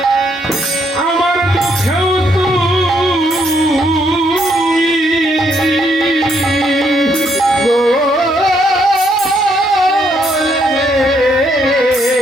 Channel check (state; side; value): normal; both; correlation 0.73